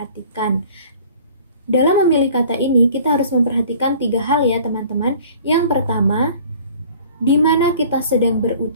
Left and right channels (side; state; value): both; inverted; correlation -0.49